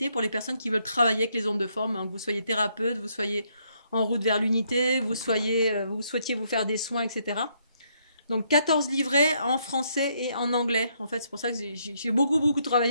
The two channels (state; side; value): inverted; both; correlation -0.73